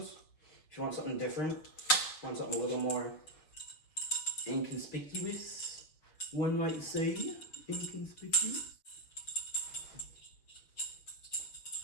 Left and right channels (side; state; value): right; late; 6.4 ms